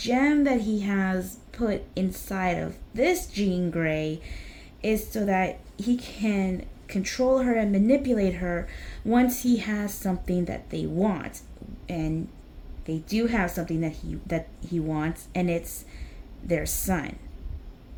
that he has put inside of this Jean Grey is so that he can control her and manipulate her once he has something that they want. And they do have something that he wants, and it's their son.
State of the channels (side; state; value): both; identical; correlation 1.00